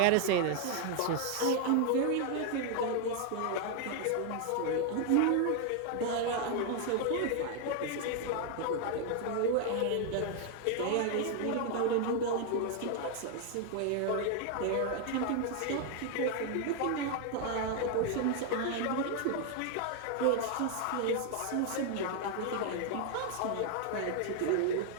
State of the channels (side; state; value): both; different; correlation 0.00